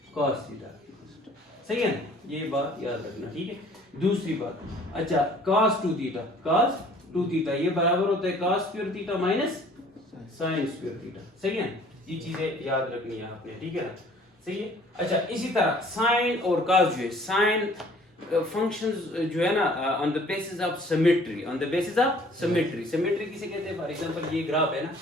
cos थीटा, सही है ना, ये बात याद रखना, ठीक है। दूसरी बात, अच्छा cos 2 थीटा, cos 2 थीटा ये बराबर होता है cos square theta minus sin square theta, सही है। ये चीजें याद रखनी है आपने, ठीक है ना, सही है। अच्छा इसी तरह sin और cos जो है, sin फंक्शंस जो है ना on the basis of symmetry, on the basis of symmetry, symmetry किसे कहते हैं? फॉर एग्जांपल ये ग्राफ है ना,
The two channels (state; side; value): normal; both; correlation 0.54